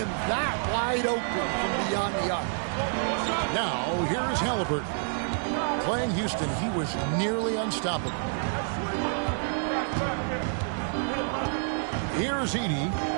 that wide open from beyond the arc. Now, here's Halliburton. Playing Houston, he was nearly unstoppable. Here's Edey.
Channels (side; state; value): left; silent; 59 dB below the other